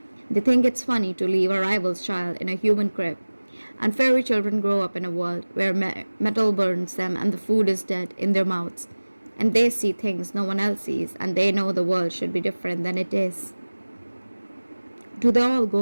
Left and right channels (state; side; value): inverted; both; correlation -1.00